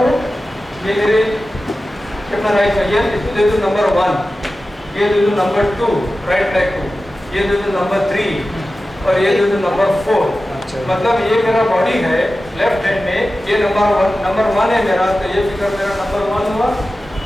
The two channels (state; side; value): normal; both; correlation 0.94